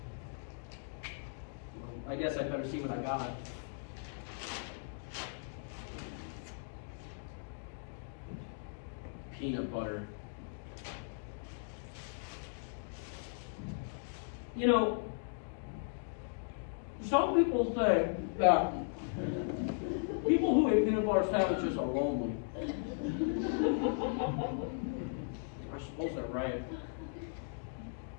Well, I guess I'd better see what I got. Peanut butter. You know, some people say that people who eat peanut butter sandwiches are lonely. I suppose they're right.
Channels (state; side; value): silent; right; digital silence